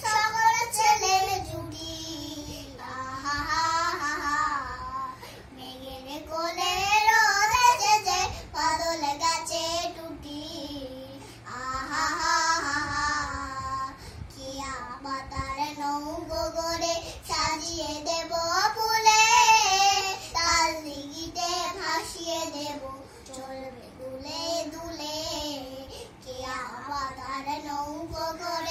সকল ছেলের জুটি আহা হা হা মেঘের কোলে রোদ এসেছে বাদলে গেছে টুটি আহা হা হা কি আবাতার নৌকো করে সাজিয়ে দেব ফুলে তার দিঘিতে ভাসিয়ে দেব চলবে দুলে দুলে কি আবাতার নৌকো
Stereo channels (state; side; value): identical; both; correlation 1.00